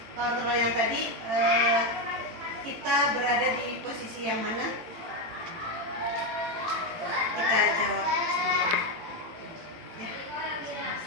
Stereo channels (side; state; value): left; late; 18 ms